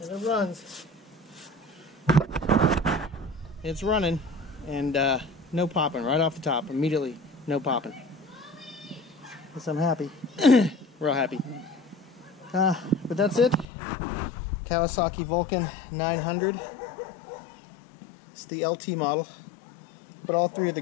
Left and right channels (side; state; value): right; drops out; at 13.7 s